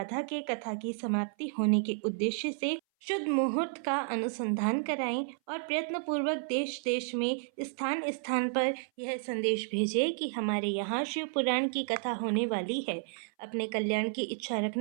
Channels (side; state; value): left; silent; 57 dB below the other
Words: के कथा की समाप्ति होने के उद्देश्य से शुद्ध मुहूर्त का अनुसंधान कराएं और प्रयत्नपूर्वक देश देश में स्थान स्थान पर यह संदेश भेजें कि हमारे यहाँ शिव पुराण की कथा होने वाली है। अपने कल्याण की इच्छा